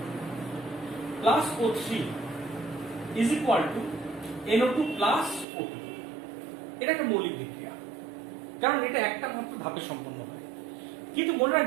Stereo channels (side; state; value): left; drops out; at 5.5 s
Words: plus O3 is equal to NO2 plus O2। এটা একটা মৌলিক বিক্রিয়া, কারণ এটা একটা মাত্র ধাপে সম্পন্ন হয়। কিন্তু মনে